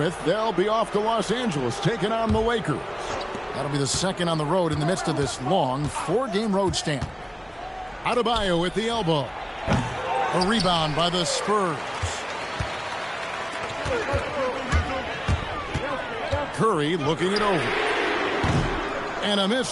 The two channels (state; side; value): identical; both; correlation 1.00